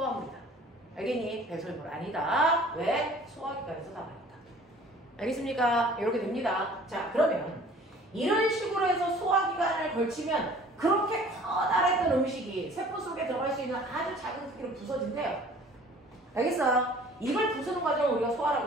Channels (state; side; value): normal; both; correlation 0.50